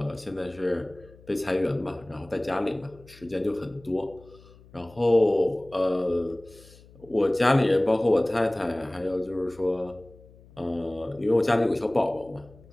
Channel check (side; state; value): left; noise; hum, 24 dB below the sound